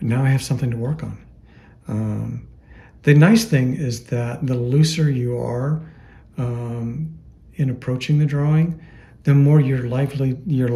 Now I have something to work on. The nice thing is that the looser you are in approaching the drawing, the more you're likely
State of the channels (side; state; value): both; identical; correlation 1.00